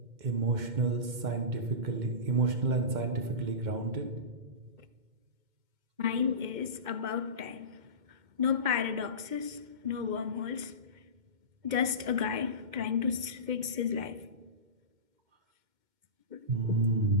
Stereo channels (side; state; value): left; late; 2.1 ms